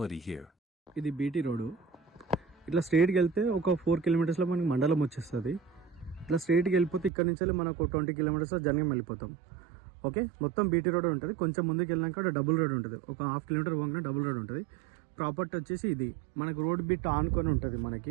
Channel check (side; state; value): left; drops out; at 7.1 s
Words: here. ఇది BT road. ఇట్లా స్ట్రైట్కి వెళ్తే ఒక 4 కిలోమీటర్స్లో మనకి మండలం వచ్చేస్తుంది. ఇట్లా స్ట్రైట్కి వెళ్ళిపోతే ఇక్కడ నుంచి మనకు 20 కిలోమీటర్స్లో జర్నీ వెళ్ళిపోతాం. ఓకే, మొత్తం బీటీ రోడ్ ఉంటుంది. కొంచెం ముందుకు వెళ్ళినాక డబుల్ రోడ్ ఉంటుంది. ఒక 1/2 కిలోమీటర్ పోగానే డబుల్ రోడ్ ఉంటుంది. ప్రాపర్టీ వచ్చేసి ఇది మనకు రోడ్ బిట్ ఆనుకొని ఉంటుంది.